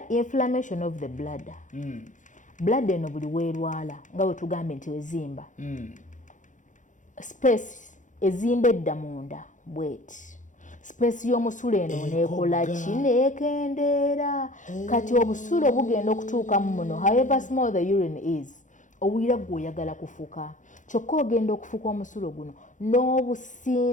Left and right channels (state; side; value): late; right; 0.37 ms